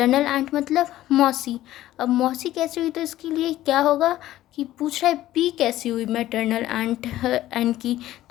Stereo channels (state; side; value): quieter; right; 14.5 dB